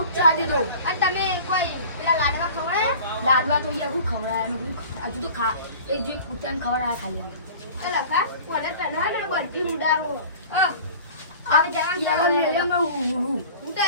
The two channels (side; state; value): both; inverted; correlation -0.42